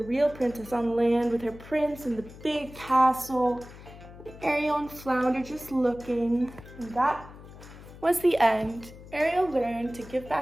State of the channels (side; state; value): left; noise; hum, 17 dB below the sound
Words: real princess on land with her prince in the big castle. Ariel and Flounder just looking. And that was the end. Ariel learned to give